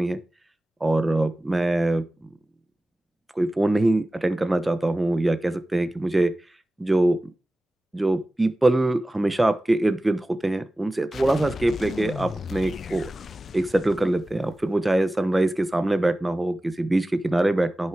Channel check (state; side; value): normal; both; correlation 0.96